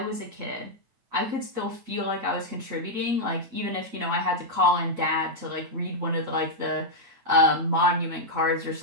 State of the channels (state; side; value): late; left; 9.1 ms